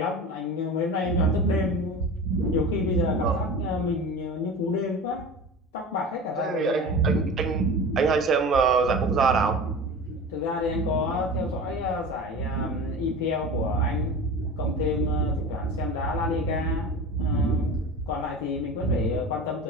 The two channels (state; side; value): normal; both; correlation 0.33